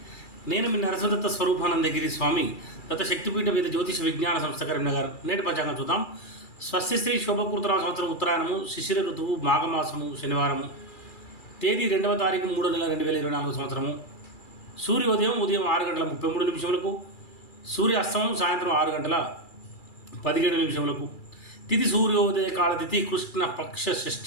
నేను మీ నరసింహదత్త స్వరూపానందగిరి స్వామి దత్త శక్తిపీఠ వేద జ్యోతిష విజ్ఞాన సంస్థ కరీంనగర్. నేటి పంచాంగం చూద్దాం. స్వస్తిశ్రీ శోభకృతరామ సంవత్సరం ఉత్తరాయణము, శిశిర ఋతువు, మాఘమాసము, శనివారము. తేదీ 2వ తారీఖు 3వ నెల 2024 సంవత్సరము. సూర్యోదయం ఉదయం 6 గంటల 33 నిమిషములకు, సూర్య అస్తమం సాయంత్రం 6 గంటల 17 నిమిషములకు. తిథి సూర్యోదయ కాల తిథి కృష్ణ పక్ష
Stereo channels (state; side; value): late; right; 2.3 ms